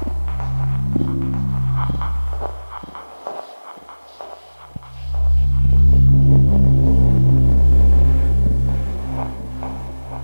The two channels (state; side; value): inverted; both; correlation -1.00